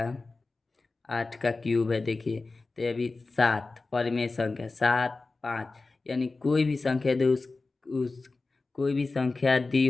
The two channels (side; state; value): right; quieter; 3.6 dB